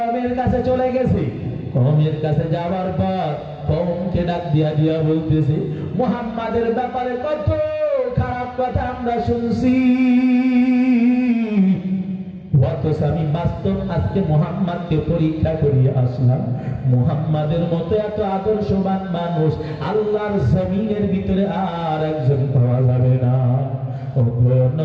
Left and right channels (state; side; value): identical; both; correlation 1.00